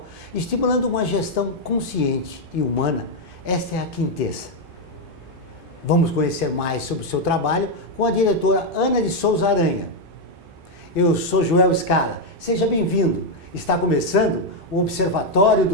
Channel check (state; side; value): normal; both; correlation 0.02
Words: estimulando uma gestão consciente e humana, esta é a Quintessa. Vamos conhecer mais sobre o seu trabalho com a diretora Ana de Souza Aranha. Eu sou Joel Scala, seja bem-vindo. Está começando o Observatório